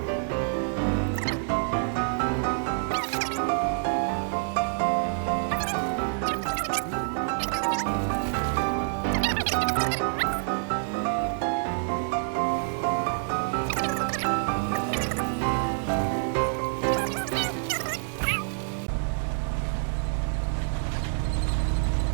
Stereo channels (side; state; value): left; silent; digital silence